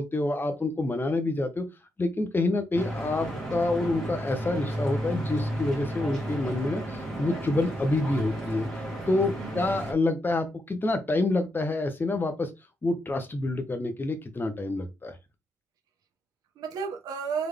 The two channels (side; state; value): both; normal; correlation 0.83